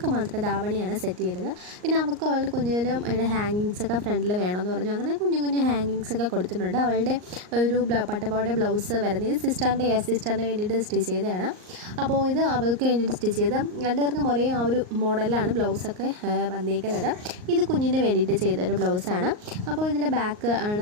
മാത്രം ധാവണിയാണ് സെറ്റ് ചെയ്തത്. പിന്നെ അവൾക്ക് അവളുടെ കുഞ്ഞിനും അതിൻ്റെ ഹാങ്ങിങ്സൊക്കെ ഫ്രണ്ടിൽ വേണമെന്ന് പറഞ്ഞു. അങ്ങനെ കുഞ്ഞു കുഞ്ഞു ഹാങ്ങിങ്സൊക്കെ കൊടുത്തിട്ടുണ്ട്. അവളുടെ ഒരു പട്ടുപാവാട ബ്ലൗസ് വരുന്നത് സിസ്റ്ററിന് വേണ്ടിയിട്ട് സ്റ്റിച്ച് ചെയ്തതാണ്. അപ്പോൾ ഇത് അവൾക്ക് വേണ്ടിയിട്ട് സ്റ്റിച്ച് ചെയ്ത് രണ്ടുപേർക്കും ഒരേ ആ ഒരു മോഡലിലാണ് ബ്ലൗസൊക്കെ വന്നിരിക്കുന്നത്. ഇത് കുഞ്ഞിന് വേണ്ടിയിട്ട് ചെയ്തൊരു ബ്ലൗസാണ്. അപ്പോൾ ഇതിൻ്റെ ബാക്ക്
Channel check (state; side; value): late; left; 38 ms